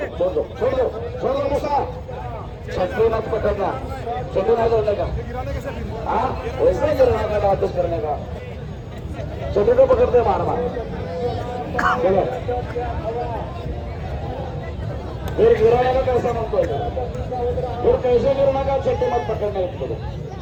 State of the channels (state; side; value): identical; both; correlation 1.00